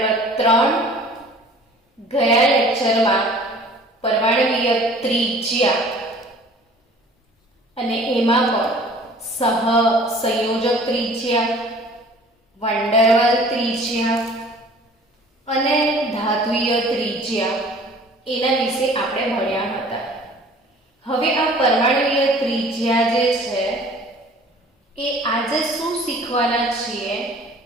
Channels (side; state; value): both; normal; correlation 0.49